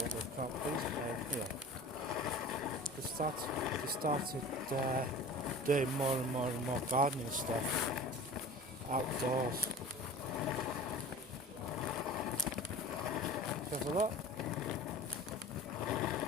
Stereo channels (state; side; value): normal; both; correlation 0.39